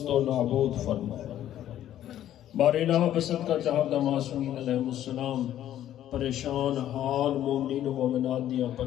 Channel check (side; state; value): right; quieter; 11.9 dB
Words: و نابود فرما۔ بار الہ بسط کا چاہتا معصومین علیہ السلام پریشان حال مومنین و مومنات دیا